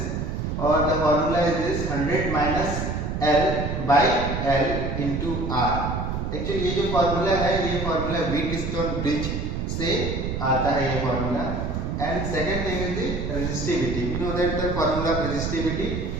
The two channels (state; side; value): noise; right; rumble, 3 dB below the sound